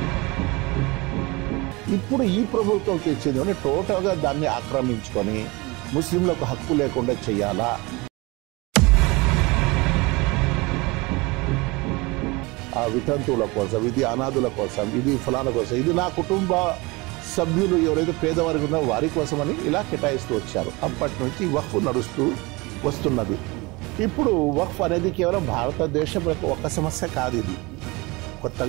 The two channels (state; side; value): quieter; left; 24.7 dB